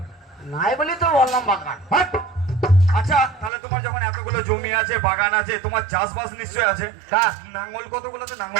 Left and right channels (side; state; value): left; drops out; at 3.5 s